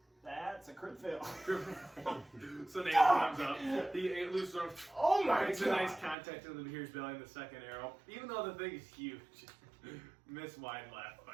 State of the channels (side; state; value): left; drops out; at 6.2 s